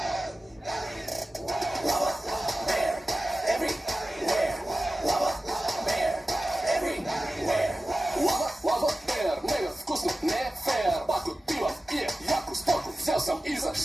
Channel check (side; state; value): both; normal; correlation 0.95